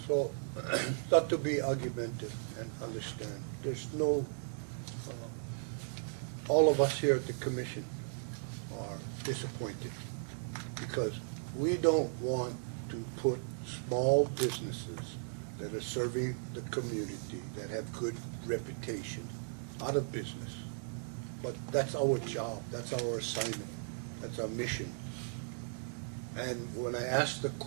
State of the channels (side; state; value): left; silent; digital silence